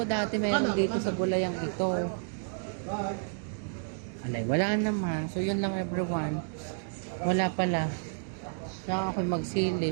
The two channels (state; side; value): silent; left; digital silence